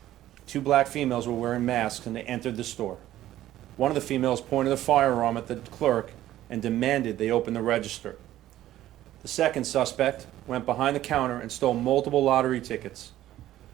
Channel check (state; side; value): quieter; left; 13.7 dB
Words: 2 black females were wearing masks and they entered the store. One of the females pointed a firearm at the clerk and demanded they open the register. The second suspect went behind the counter and stole multiple lottery tickets.